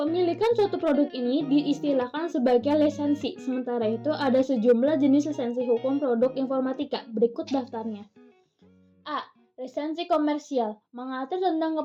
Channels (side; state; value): both; identical; correlation 1.00